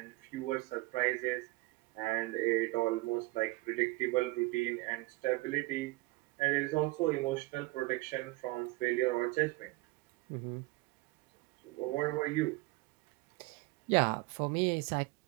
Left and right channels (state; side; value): quieter; left; 21.8 dB